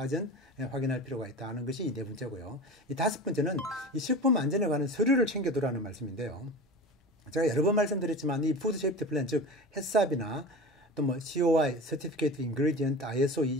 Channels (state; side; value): normal; both; correlation 0.32